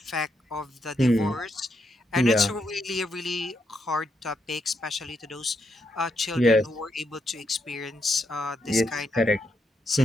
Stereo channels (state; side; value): normal; both; correlation 0.80